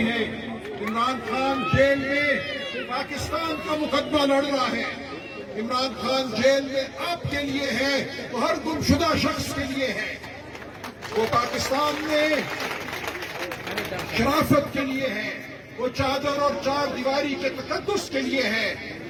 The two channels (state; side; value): identical; both; correlation 1.00